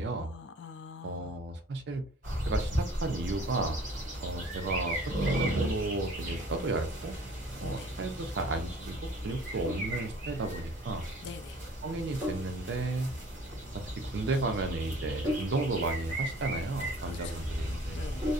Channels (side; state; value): both; normal; correlation 0.51